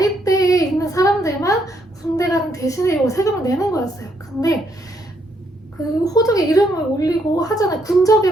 있는 사람들만 군대 가는 대신에 이 세금을 내는 거였어요. 근데 그 호적에 이름을 올리고 하잖아요.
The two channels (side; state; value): both; normal; correlation 0.73